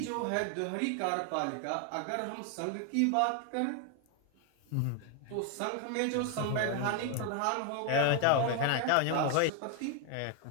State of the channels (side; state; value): both; different; correlation 0.01